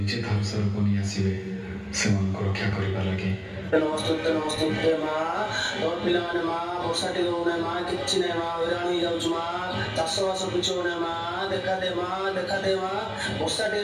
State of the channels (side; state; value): both; identical; correlation 1.00